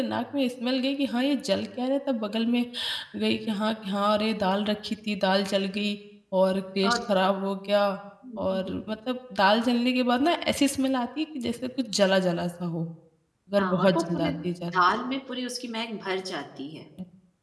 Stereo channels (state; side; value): identical; both; correlation 1.00